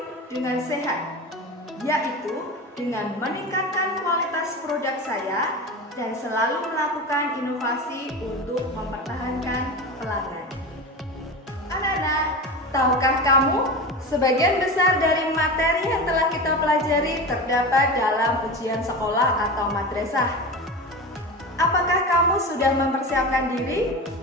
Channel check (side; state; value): both; normal; correlation 0.27